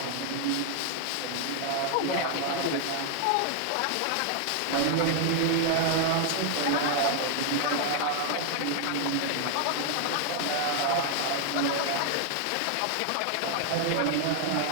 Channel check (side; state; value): both; different; correlation 0.00